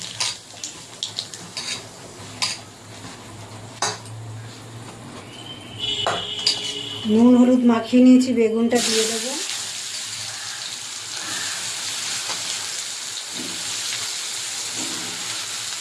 নুন হলুদ মাখিয়ে নিয়েছি, বেগুনটা দিয়ে দেবো।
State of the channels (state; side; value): identical; both; correlation 1.00